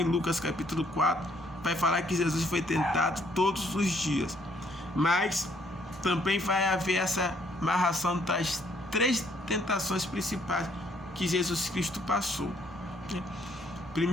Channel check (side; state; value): both; normal; correlation 0.67